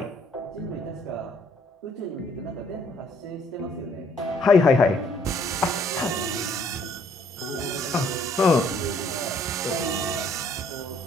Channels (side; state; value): both; normal; correlation 0.63